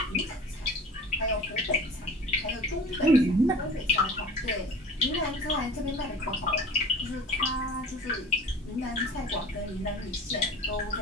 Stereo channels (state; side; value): normal; both; correlation 0.41